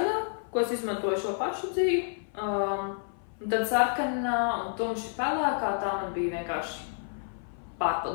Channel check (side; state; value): right; silent; 55 dB below the other